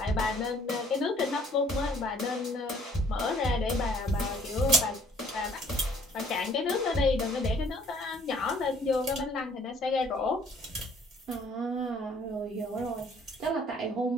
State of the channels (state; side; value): normal; both; correlation 0.59